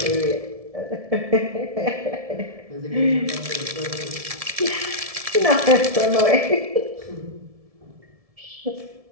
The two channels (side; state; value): left; late; 1.7 ms